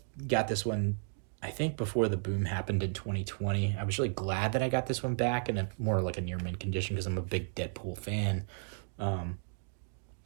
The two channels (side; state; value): left; silent; 55 dB below the other